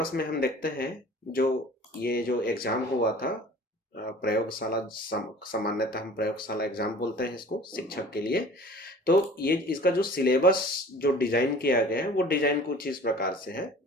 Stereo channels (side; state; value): both; normal; correlation 0.45